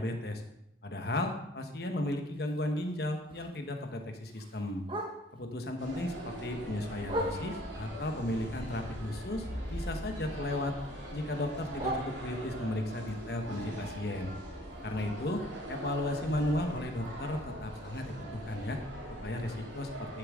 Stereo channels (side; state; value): both; normal; correlation 0.57